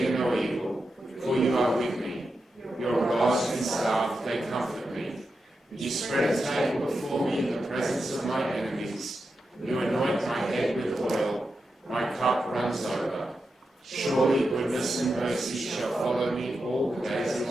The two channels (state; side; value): normal; both; correlation 0.88